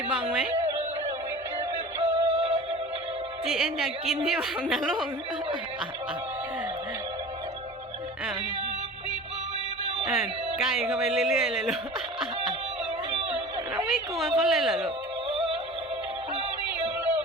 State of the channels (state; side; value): normal; both; correlation 0.38